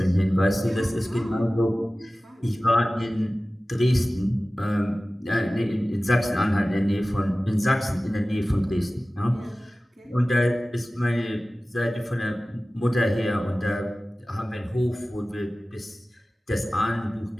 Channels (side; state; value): both; normal; correlation 0.97